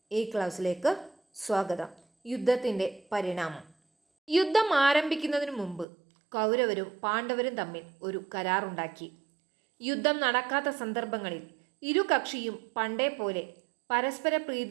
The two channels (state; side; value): drops out; left; at 5.9 s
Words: ഈ ക്ലാസ്സിലേക്ക് സ്വാഗതം. യുദ്ധത്തിൻ്റെ പരിണാമം. യുദ്ധം ആരംഭിക്കുന്നതിന് മുമ്പ് കൗരവരും പാണ്ഡവരും തമ്മിൽ ഒരു കരാറുണ്ടാക്കി. യുദ്ധം നടക്കാത്ത സന്ദർഭങ്ങളിൽ ഇരു കക്ഷിയും പണ്ടേ പോലെ പരസ്പര